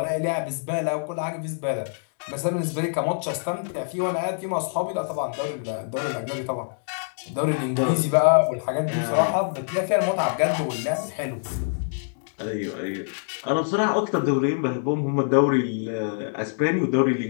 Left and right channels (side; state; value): right; silent; digital silence